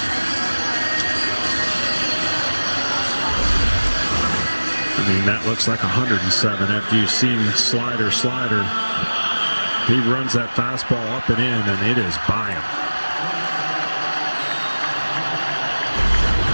I mean, that looks like 107 after you've seen slider. He runs that fastball up and in, and it is by him.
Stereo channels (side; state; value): both; inverted; correlation -1.00